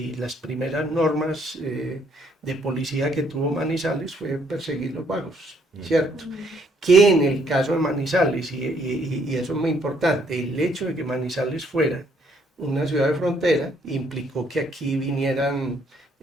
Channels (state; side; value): normal; both; correlation 0.68